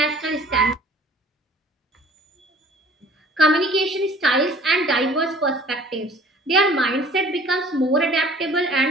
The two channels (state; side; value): normal; both; correlation 0.51